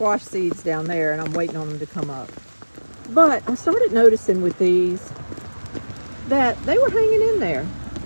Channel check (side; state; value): both; inverted; correlation -1.00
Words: seeds down there, and I'm waiting on them to come up. But I started noticing with these that they were hanging in there.